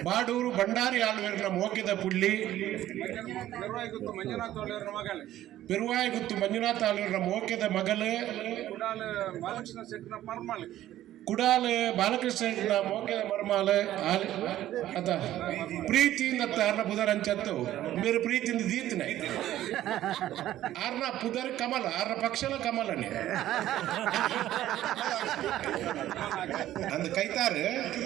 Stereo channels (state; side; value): quieter; left; 13.4 dB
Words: ಬಾಡೂರು ಭಂಡಾರಿ ಆಳ್ವೇರ್ನ ಮೋಕೆದ ಪುಲ್ಲಿ ಪೆರುವಾಯಿ ಗುತ್ತು ಮಂಜುನಾಥ ಆಳ್ವೇರ್ನ ಮೋಕೆದ ಮಗಲು ಕುಡಾಲ ಬಾಲಕೃಷ್ಣ ಮೋಕೆದ ಮರ್ಮಾಲ ಅದ ಪ್ರೀತಿಯಿಂದ ಆರ್ನ ಪುದರ್ ಅಂಚತ್ತು ಬೇರೆ ಪ್ರೀತಿಯಿಂದ ದೀತನೆ ಆರ್ನ ಪುದರ್ ಕಮಲ ಆರ್ನ ಪಕ್ಷಲ ಕಮಲನೆ ಅಂದ ಕೈತಾರು